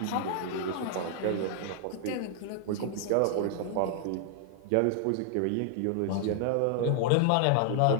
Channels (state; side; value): different; both; correlation 0.00